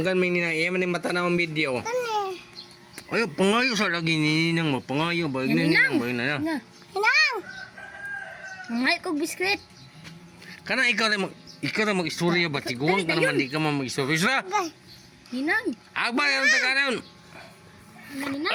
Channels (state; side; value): identical; both; correlation 1.00